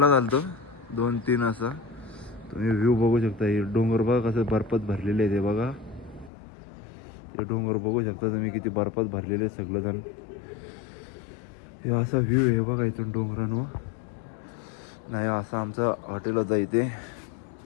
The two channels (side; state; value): right; drops out; at 6.3 s